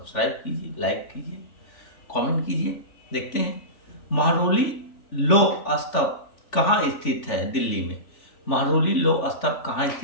कीजिए, लाइक कीजिए, कमेंट कीजिए। देखते हैं महरौली लौह स्तंभ कहाँ स्थित है? दिल्ली में। महरौली लौह स्तंभ कहाँ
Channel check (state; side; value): late; right; 3.4 ms